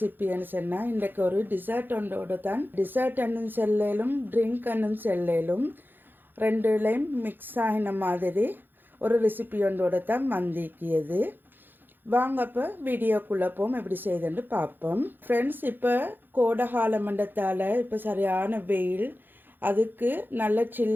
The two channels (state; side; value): late; left; 0.093 ms